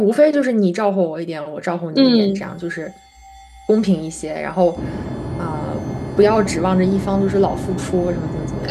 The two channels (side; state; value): both; identical; correlation 1.00